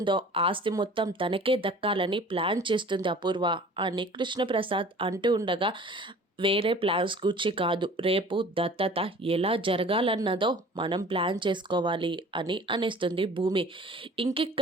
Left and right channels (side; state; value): both; normal; correlation 0.46